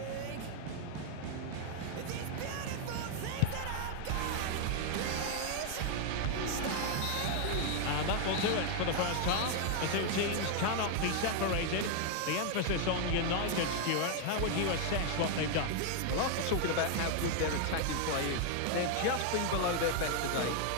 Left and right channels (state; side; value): different; both; correlation 0.00